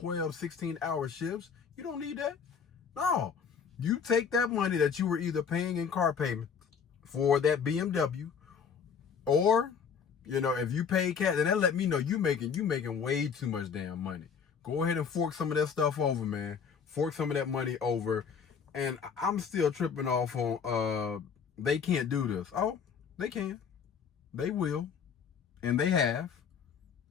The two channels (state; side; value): quieter; right; 6.6 dB